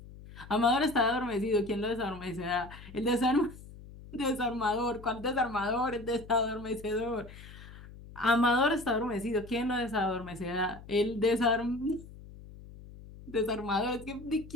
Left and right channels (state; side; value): noise; left; hum, 17 dB below the sound